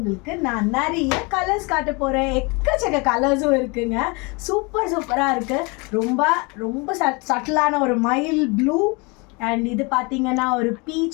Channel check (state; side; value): quieter; right; 28.8 dB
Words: நான் நிறைய கலர்ஸ் காட்ட போகிறேன். எக்கச்சக்க கலர்ஸும் இருக்குங்க. சூப்பராக இருக்குது. ரொம்ப ரொம்ப சட்டிலான ஒரு மைல் ப்ளூ அண்ட் இது பார்த்தீங்கன்னா ஒரு